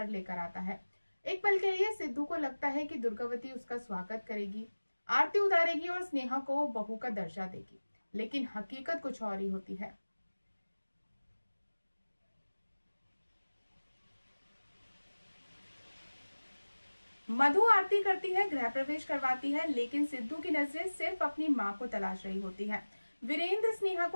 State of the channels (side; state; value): both; inverted; correlation -1.00